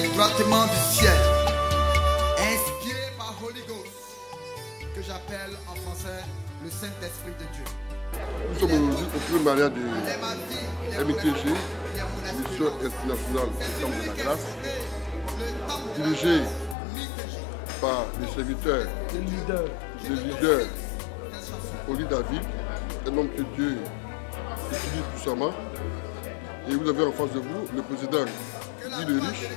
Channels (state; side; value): drops out; right; at 16.8 s